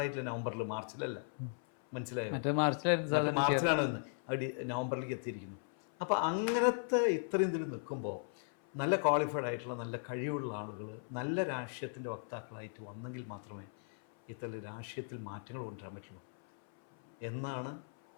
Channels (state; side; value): silent; right; 53 dB below the other